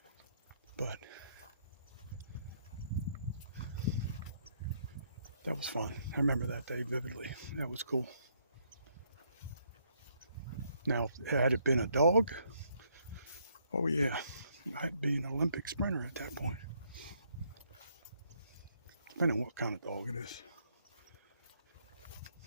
But that was fun. I remember that day vividly. That was cool. Now, had it been a dog, oh yeah, I'd be an Olympic sprinter at that point. Depending on what kind of dog it is.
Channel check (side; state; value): both; inverted; correlation -0.70